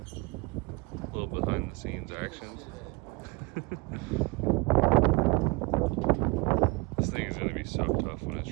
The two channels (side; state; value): left; quieter; 26.2 dB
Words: This thing is gonna be so tough when it's